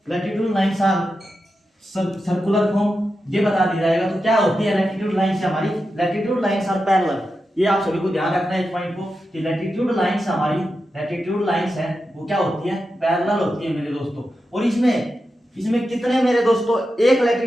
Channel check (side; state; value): both; normal; correlation 0.89